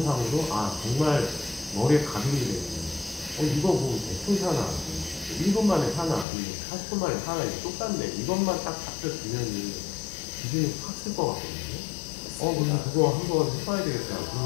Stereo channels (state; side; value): drops out; right; at 6.2 s